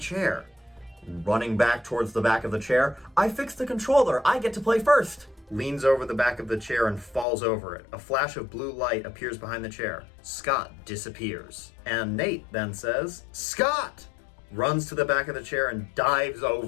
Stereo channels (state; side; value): drops out; right; at 7.2 s